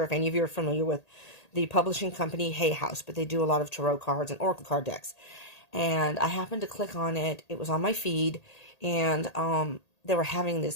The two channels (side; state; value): right; late; 1.8 ms